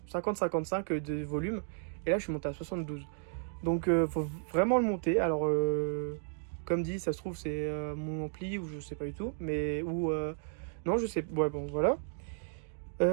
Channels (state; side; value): silent; left; digital silence